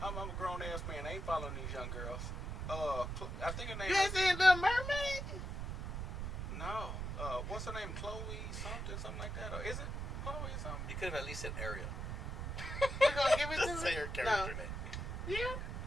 grown ass man. I ain't following these young girls. I think her name. You ain't seen Little Mermaid? No. What's her name? Chloe something like that, or is it Chloe something? You could have at least said Ariel. You gonna give it to me? Say her character name. Yeah.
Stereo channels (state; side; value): noise; right; rumble, 4 dB below the sound